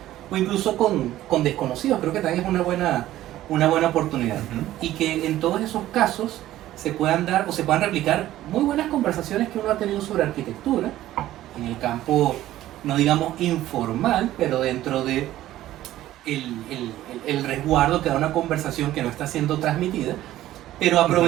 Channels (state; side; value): quieter; left; 14.2 dB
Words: o incluso con desconocidos. Creo que también es una buena oportunidad. Y que en todos esos casos se puedan dar o se puedan replicar muy buenas conversaciones que uno ha tenido sobre arquitectura, en el campo, no digamos informal, pero dentro de el resguardo que da una conversación que no está siendo transmitida, pero